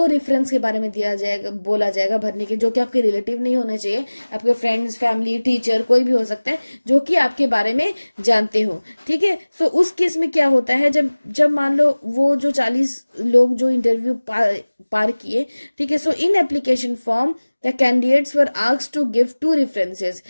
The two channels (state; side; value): inverted; both; correlation -1.00